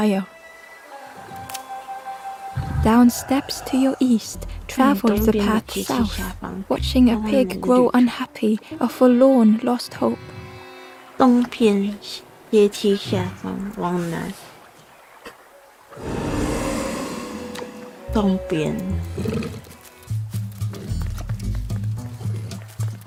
Down steps to your east, travel the path south, watching a pig grow unhappy, a forlorn lost hope. 东边阶梯下方往南，东边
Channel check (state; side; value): identical; both; correlation 1.00